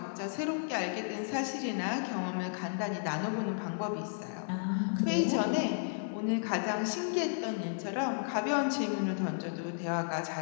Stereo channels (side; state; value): right; silent; digital silence